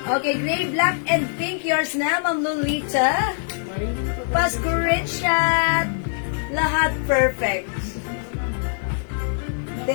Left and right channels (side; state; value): right; silent; digital silence